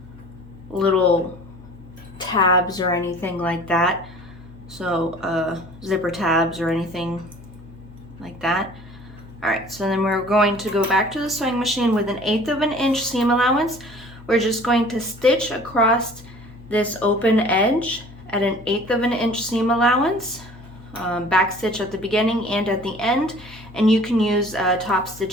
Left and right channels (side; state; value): left; noise; hum, 20 dB below the sound